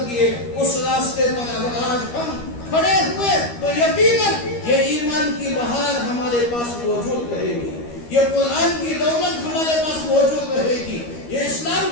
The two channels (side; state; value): right; late; 13 ms